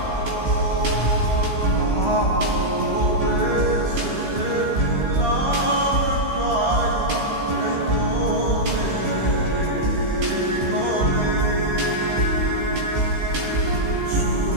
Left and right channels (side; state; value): left; late; 16 ms